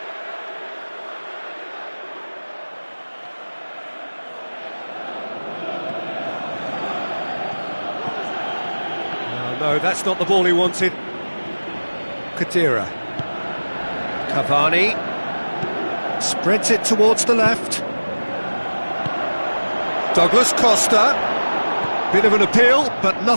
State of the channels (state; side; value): inverted; both; correlation -1.00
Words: No, that's not the ball he wanted. Khedira. Cavani. Spreads it towards the left. Douglas Costa. Bit of an appeal, but